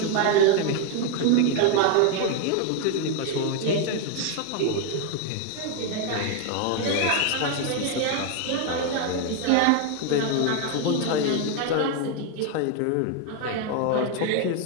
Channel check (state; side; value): different; both; correlation 0.01